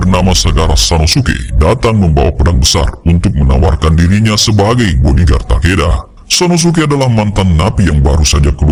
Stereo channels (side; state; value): both; identical; correlation 1.00